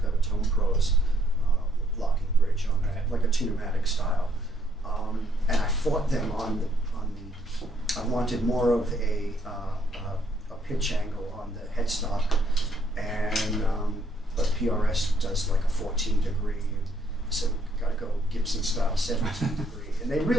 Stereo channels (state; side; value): normal; both; correlation 0.69